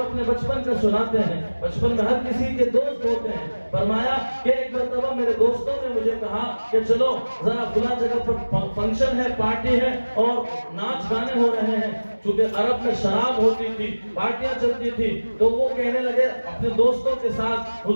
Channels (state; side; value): inverted; both; correlation -1.00